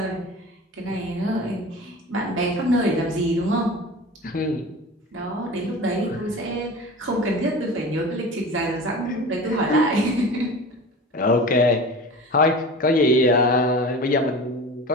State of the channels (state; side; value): normal; both; correlation 0.35